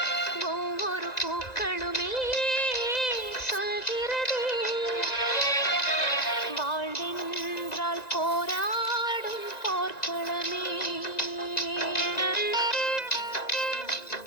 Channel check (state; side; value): late; right; 1.9 ms